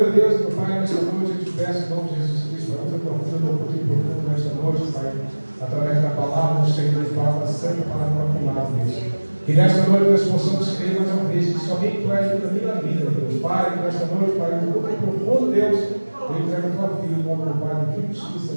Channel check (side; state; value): both; inverted; correlation -1.00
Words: Deus, meu Pai, nesta noite eu te peço em nome de Jesus Cristo, a outra profunda, profundo nesta noite, Pai, através da palavra do Senhor, palavra santa, palavra proclamada, Deus. Que nesta noite nós possamos crer mais uma vez que somente Tu és da minha vida, Deus. Pai, que nesta noite, Pai, no mundo profundo, Deus, eu entrego a Tua filha, no nome do Pai, do Filho e do Espírito